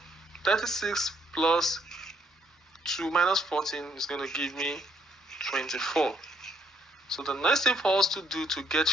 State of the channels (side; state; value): both; normal; correlation 0.69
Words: 36 plus 2 minus 14 is going to give me 24. So the next thing for us to do to get